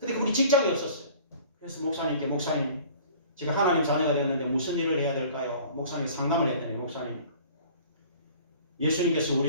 그분이 직장이 없었어요. 그래서 목사님께 목사님 제가 하나님 자녀가 되었는데 무슨 일을 해야 될까요? 목사님이 상담을 했더니 목사님 예수님께서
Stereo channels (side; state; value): both; inverted; correlation -0.48